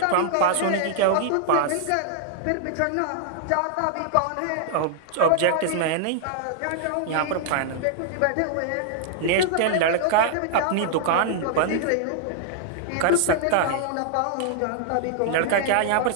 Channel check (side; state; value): both; different; correlation -0.01